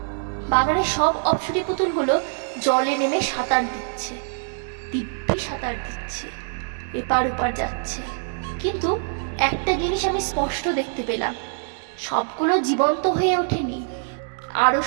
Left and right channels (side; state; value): left; silent; digital silence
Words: বাগানের সব অপ্সরী পুতুলগুলো জলে নেমে সাঁতার দিচ্ছে, দিব্যি সাঁতার দিচ্ছে, এপার ওপার যাচ্ছে। কিন্তু একটা জিনিস আমি স্পষ্ট দেখতে পেলাম, সবগুলো জীবন্ত হয়ে ওঠেনি,